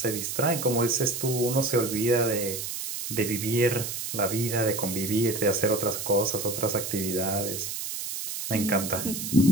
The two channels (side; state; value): right; noise; hiss, 5 dB below the sound